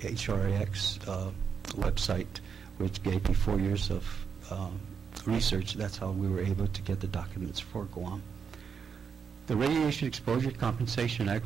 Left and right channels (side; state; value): left; quieter; 6.5 dB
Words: website, which gave me 4 years of research. That's how we were able to get the documents for Guam. The Radiation Exposure Compensation